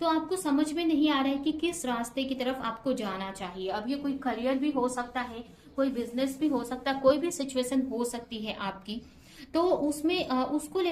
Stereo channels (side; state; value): both; identical; correlation 1.00